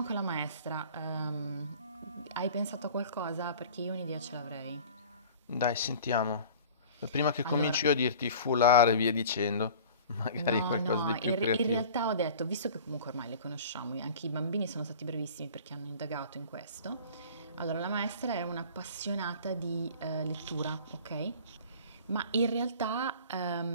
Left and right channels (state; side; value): inverted; both; correlation -0.43